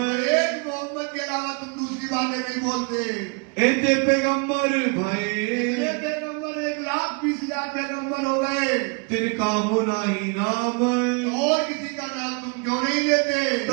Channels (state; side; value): quieter; left; 33.7 dB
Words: एक मोहम्मद के अलावा तुम दूसरी बातें नहीं बोलते। इतने पैगम्बर भाई, ये पैगम्बर 1,20,000 पैगम्बर हो गए, तिनका होना ही नाम, और किसी का नाम तुम क्यों नहीं लेते?